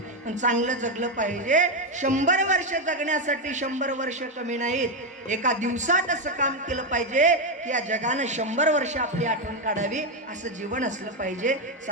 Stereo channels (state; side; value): normal; both; correlation 0.06